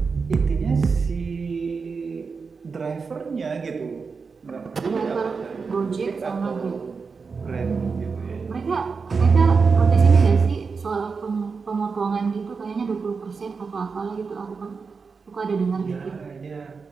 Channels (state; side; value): quieter; left; 5.0 dB